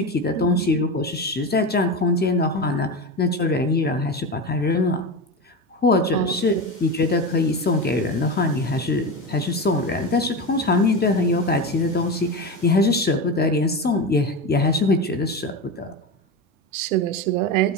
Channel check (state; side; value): normal; both; correlation 0.21